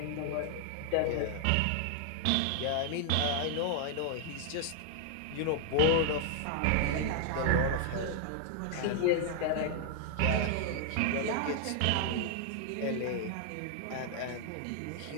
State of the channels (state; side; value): different; both; correlation 0.00